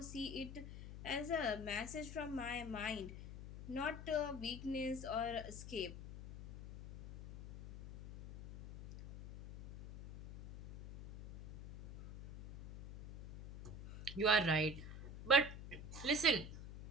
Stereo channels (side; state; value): left; noise; hum, 11 dB below the sound